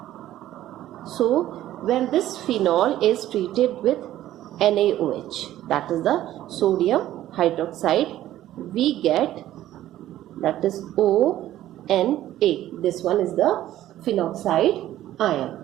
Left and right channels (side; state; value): left; quieter; 13.5 dB